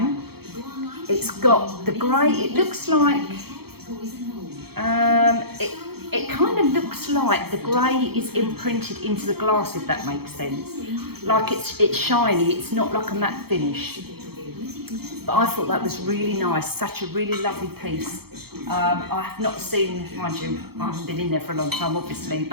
It's got the grey, it looks like, it kind of looks like the grey is imprinted into the glass, if that makes sense. Like it's shiny, it's not like a matte finish. But I thought that was really nice, such a really lovely piece. I have not seen, mind you, I haven't been in there for a long time obviously,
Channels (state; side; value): late; left; 0.96 ms